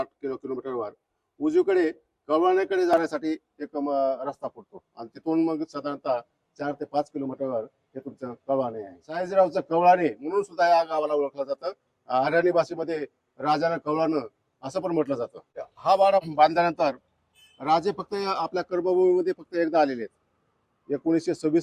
किलोमीटरवर उजवीकडे कवळाण्याकडे जाण्यासाठी एक रस्ता पडतो. आणि तिथून मग साधारणतः 4 ते 5 किलोमीटरवर हे तुमचं कवळाणे आहे. सयाजीरावचं कवळाणे म्हणून सुद्धा या गावाला ओळखलं जातं. हरियाणी भाषेमध्ये राजानं कवळानं असं पण म्हटलं जातं. हा वाडा बांधल्यानंतर राजे फक्त आपल्या कर्मभूमीमध्ये फक्त एकदा आलेले आहेत.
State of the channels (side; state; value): both; identical; correlation 1.00